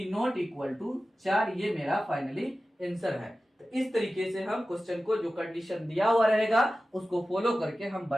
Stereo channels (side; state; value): both; normal; correlation 0.95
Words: नॉट इक्वल टू 4 ये मेरा फाइनली आंसर है। तो इस तरीके से हम क्वेश्चन को जो कंडीशन दिया हुआ रहेगा उसको फॉलो करके हम